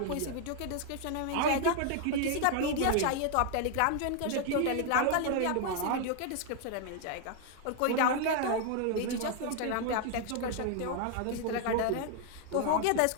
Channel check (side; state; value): both; different; correlation 0.00